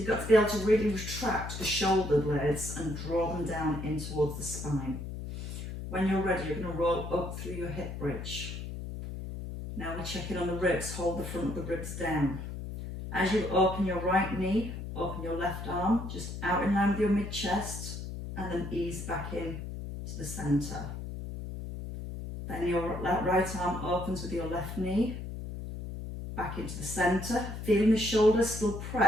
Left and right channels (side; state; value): left; noise; hum, 7 dB below the sound